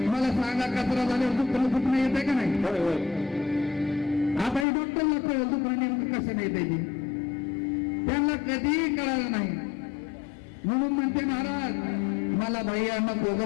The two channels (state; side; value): drops out; right; at 4.7 s